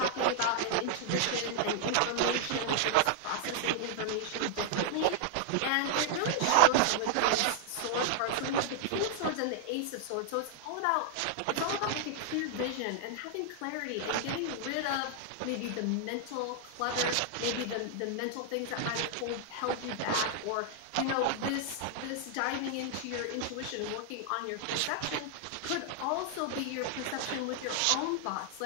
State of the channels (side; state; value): both; different; correlation -0.01